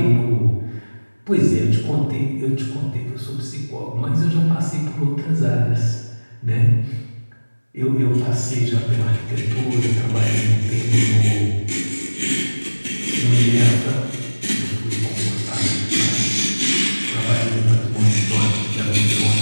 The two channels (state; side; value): inverted; both; correlation -1.00